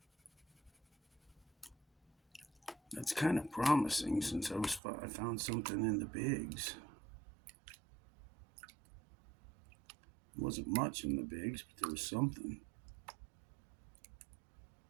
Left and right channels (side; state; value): left; drops out; at 4.8 s